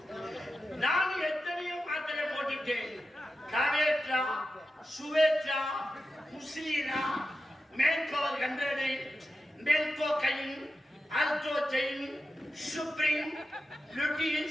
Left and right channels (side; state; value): both; normal; correlation 0.91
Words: நான் எத்தனையோ மாத்திரை போட்டுட்டேன். காவேட்ரா, சுவேட்ரா, முஸ்லீனா, மேல்கோவர் 100, மேல்கோ கைன், அல்ட்ரோஜைன், சுப்ரீம்,